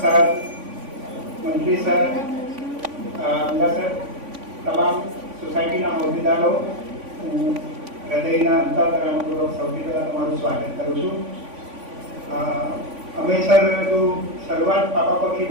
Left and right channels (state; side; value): late; left; 3.5 ms